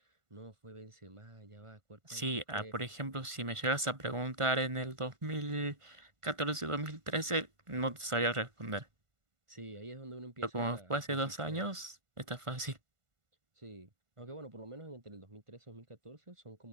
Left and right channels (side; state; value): left; late; 1.5 ms